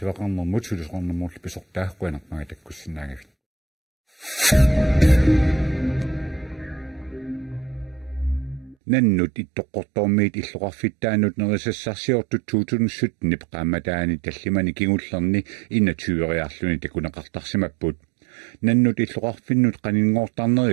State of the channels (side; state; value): left; drops out; at 8.8 s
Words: sulisqornermurlu pisortaaqquanaqmaga takkussinaagavit nannut ittoqqortormiit illuqarfittaanut nerisassarsiortut 2017 qaamataani tallimani kingullerni innatyueriarluni takuneqartarsimapput nannut illuqarfinnut